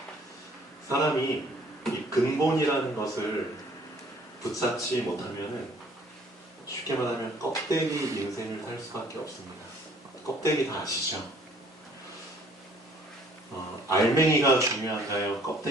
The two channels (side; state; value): both; normal; correlation 0.57